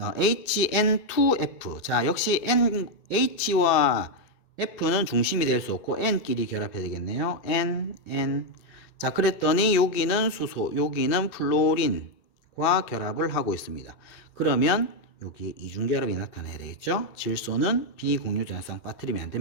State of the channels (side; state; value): right; late; 2.6 ms